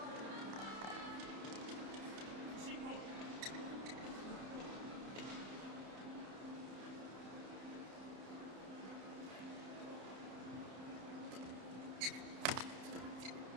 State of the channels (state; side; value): late; left; 31 ms